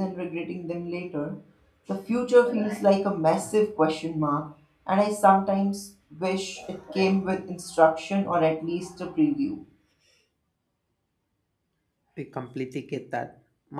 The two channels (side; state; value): both; identical; correlation 1.00